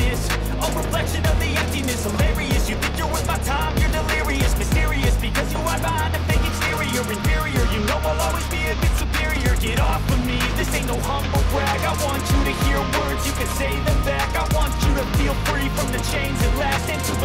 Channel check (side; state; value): both; identical; correlation 1.00